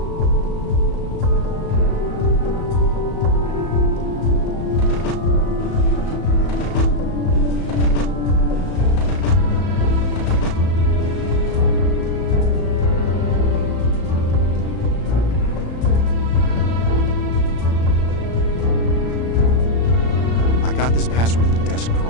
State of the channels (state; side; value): late; right; 34 ms